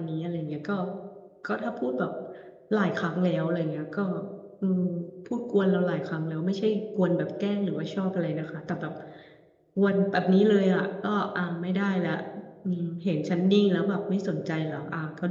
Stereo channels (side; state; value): both; identical; correlation 1.00